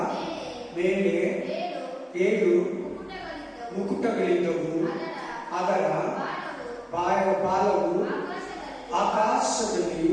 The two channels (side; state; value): both; identical; correlation 1.00